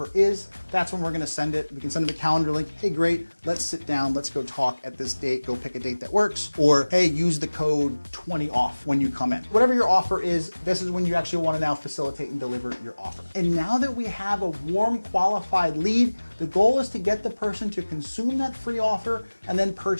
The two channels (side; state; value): both; inverted; correlation -1.00